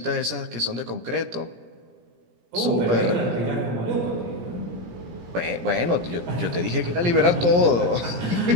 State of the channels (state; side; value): late; left; 17 ms